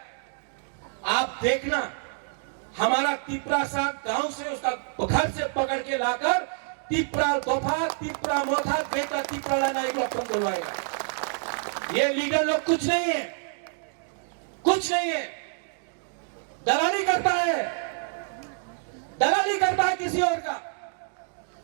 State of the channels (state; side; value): silent; left; digital silence